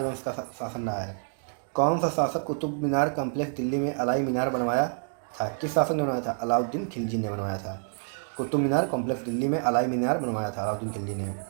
का शासन रहा है। कौन सा शासक कुतुब मीनार कम्प्लेक्स दिल्ली में अलाई मीनार बनवाया था? किस शासक ने बनवाया था? अलाउद्दीन खिलजी ने बनवाया था। कुतुब मीनार कॉम्प्लेक्स दिल्ली में अलाई मीनार बनवाया था अलाउद्दीन खिलजी ने।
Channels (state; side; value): silent; left; 59 dB below the other